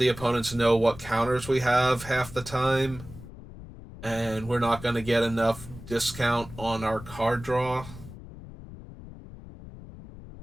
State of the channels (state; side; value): noise; left; rumble, 15 dB below the sound